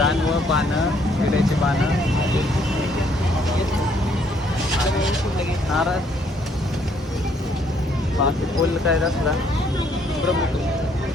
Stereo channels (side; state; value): both; normal; correlation 0.67